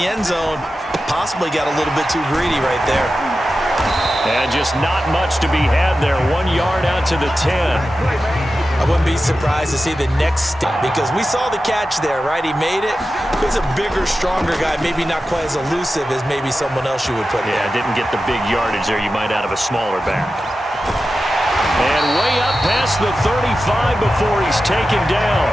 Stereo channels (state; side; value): normal; both; correlation 0.92